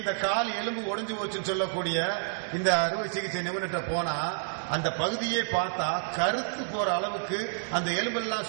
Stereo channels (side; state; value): left; silent; digital silence